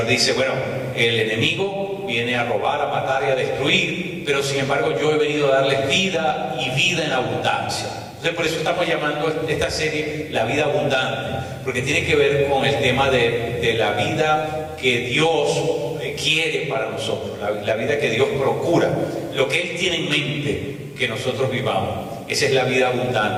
dice, bueno, el enemigo viene a robar, a matar y a destruir, pero sin embargo yo he venido a darles vida y vida en abundancia. Entonces por eso estamos llamando esta serie La Vida Abundante, porque tiene que ver con el tema de la vida que Dios quiere para nosotros, la vida que Dios procura, lo que Él tiene en mente que nosotros vivamos. Esa es la vida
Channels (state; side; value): identical; both; correlation 1.00